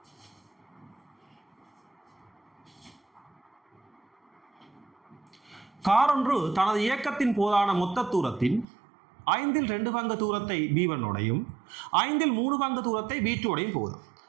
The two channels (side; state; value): left; drops out; at 8.7 s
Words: காரொன்று தனது இயக்கத்தின் போதான மொத்த தூரத்தின் 2 பங்கு தூரத்தை B1 உடையும் 3 பங்கு தூரத்தை B2 உடையும் போகுது.